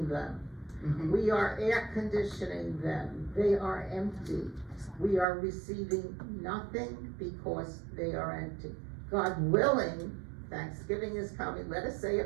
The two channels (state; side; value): drops out; left; at 5.2 s